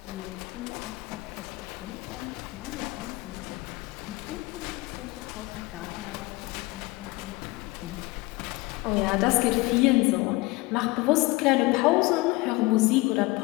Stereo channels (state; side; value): quieter; right; 21.8 dB